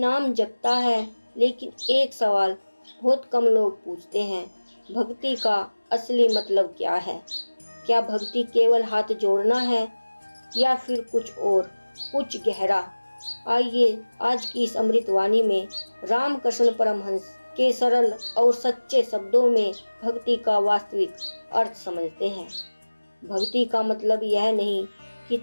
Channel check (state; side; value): inverted; both; correlation -1.00